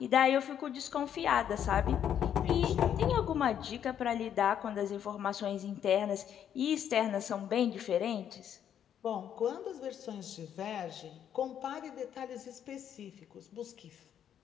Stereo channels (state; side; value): quieter; right; 9.4 dB